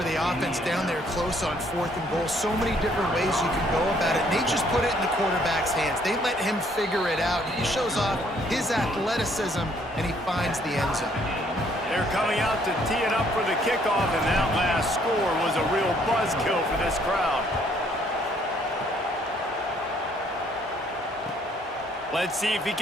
the offense down there close on 4th and goal. So many different ways you can go about it. They just put it in the quarterback's hands. They let him figure it out. He shows off his athleticism, and he finds the end zone. They're coming out to tee it up for the kickoff, and that last score was a real buzzkill for this crowd. Let's see if he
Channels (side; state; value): both; normal; correlation 0.65